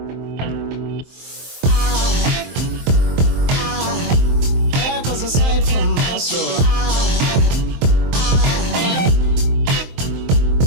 There goes a sight from my soul.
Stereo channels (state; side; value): late; left; 23 ms